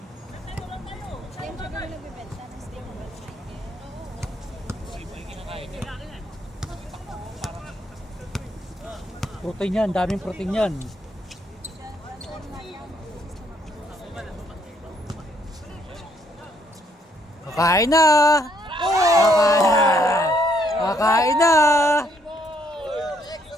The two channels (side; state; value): both; normal; correlation 0.70